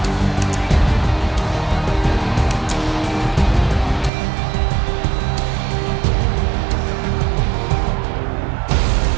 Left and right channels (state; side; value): drops out; left; at 4.1 s